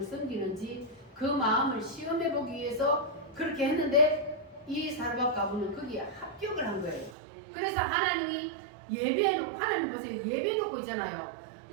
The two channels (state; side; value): drops out; left; at 7.2 s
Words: 섬기는지 그 마음을 시험해 보기 위해서 그렇게 했는데, 이 사르밧 과부는 거기에 합격을 한 거예요. 그래서 하나님이 예배해놓고, 하나님 보세요, 예배해놓고 있잖아요.